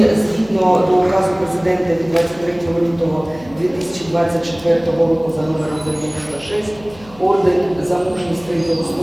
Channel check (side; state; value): left; noise; hum, 22 dB below the sound